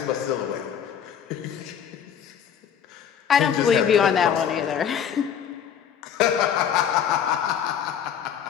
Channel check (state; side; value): quieter; right; 8.5 dB